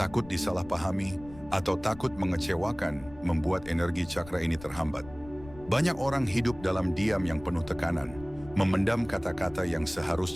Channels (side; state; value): left; noise; rumble, 18 dB below the sound